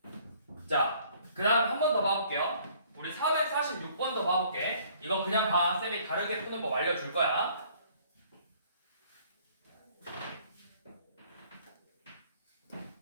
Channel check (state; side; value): inverted; both; correlation -0.59